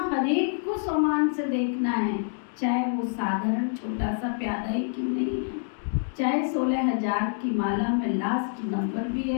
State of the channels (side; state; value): right; silent; digital silence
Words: हर एक को सोमान से देखना है, चाहे वो साधारण छोटा सा प्यादा ही क्यों नहीं है, चाहे 16,000 की माला में लास्ट नंबर भी